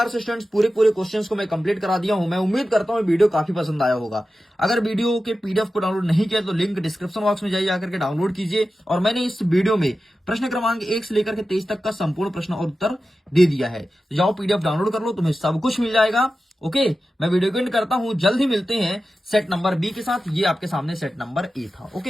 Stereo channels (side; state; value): both; normal; correlation 0.93